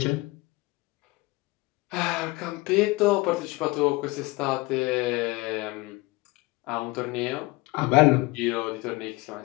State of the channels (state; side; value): quieter; right; 22.4 dB